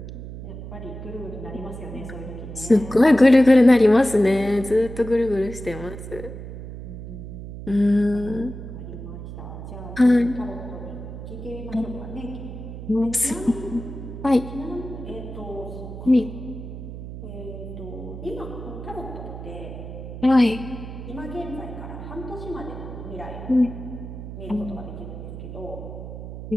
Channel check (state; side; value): noise; right; hum, 10 dB below the sound